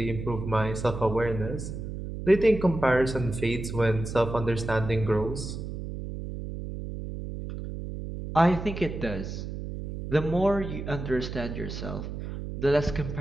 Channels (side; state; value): right; noise; hum, 7 dB below the sound